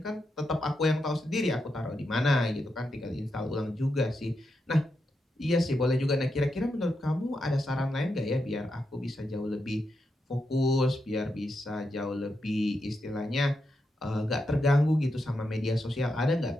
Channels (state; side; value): normal; both; correlation 0.85